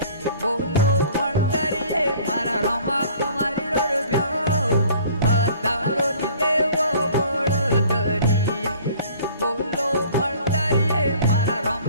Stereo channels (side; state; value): both; inverted; correlation -0.51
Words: बोलो बड़दरिये मारा रोमा तुम्हारी रोड ब्याओ पतारो नी देवो बड़दरिये बोलो बड़दरिये मारा